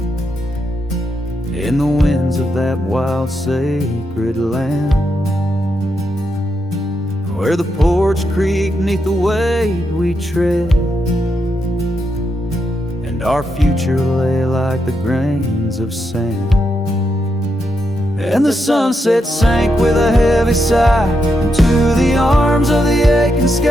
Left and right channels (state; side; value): normal; both; correlation 0.83